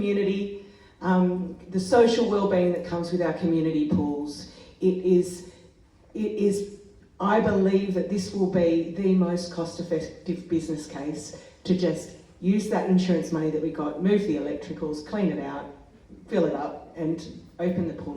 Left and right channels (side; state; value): both; identical; correlation 1.00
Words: the social well-being that comes with our community pools. It is, I believe that this will be the most cost-effective business case to just use that insurance money that we got, move the electricals, clean it out, fill it up, and open the